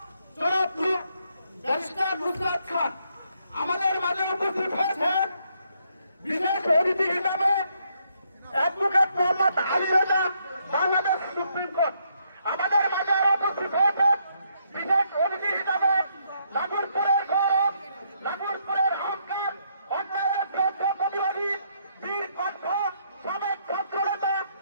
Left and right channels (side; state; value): both; inverted; correlation -0.74